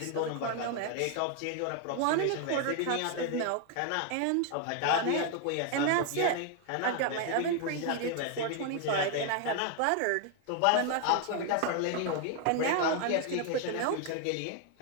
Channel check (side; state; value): both; different; correlation 0.00